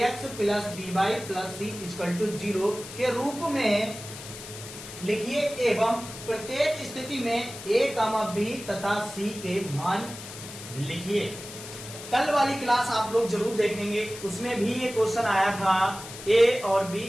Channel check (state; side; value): noise; left; hiss, 13 dB below the sound